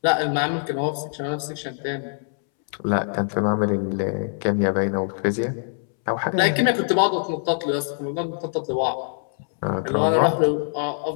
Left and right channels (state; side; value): silent; right; 63 dB below the other